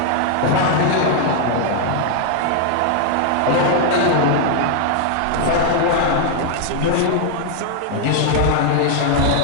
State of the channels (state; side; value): different; both; correlation 0.00